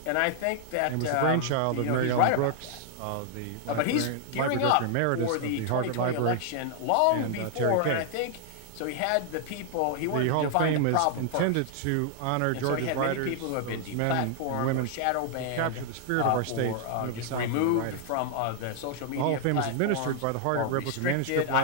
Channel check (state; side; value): different; both; correlation -0.01